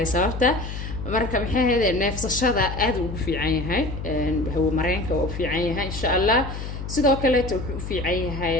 sababta marka maxay ahayd neefsashada aad ugu fiican yahay hawo mareenka oo u fiican yahay insha Allah sidoo kale wuxuu u fiican yahay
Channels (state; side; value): noise; left; hum, 7 dB below the sound